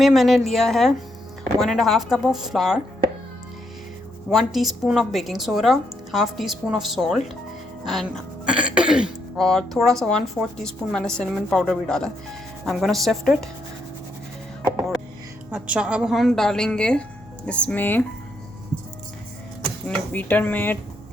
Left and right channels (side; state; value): both; normal; correlation 0.77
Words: मैंने लिया है 1.5 cup of flour, 1 teaspoon of baking soda, half teaspoon of salt and और थोड़ा सा 1/4 टीस्पून मैंने सिनेमन पाउडर भी डाला। I am gonna sift it. और अच्छा, अब हम डालेंगे इसमें अपने बीटर में